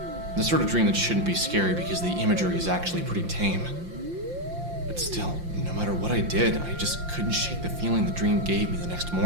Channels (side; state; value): left; late; 5.7 ms